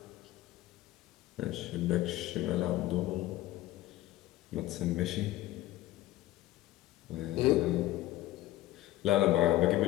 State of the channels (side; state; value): right; quieter; 15.3 dB